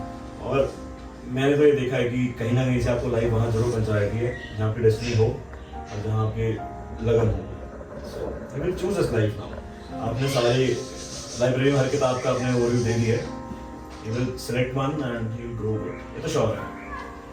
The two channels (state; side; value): identical; both; correlation 1.00